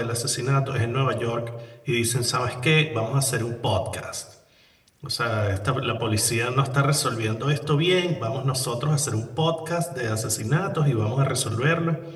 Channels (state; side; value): identical; both; correlation 1.00